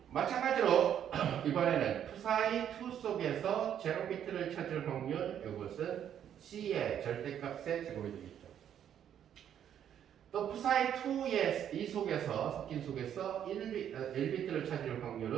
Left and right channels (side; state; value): left; quieter; 9.6 dB